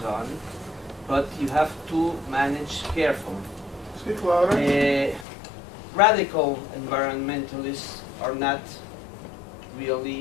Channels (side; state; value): right; drops out; at 5.2 s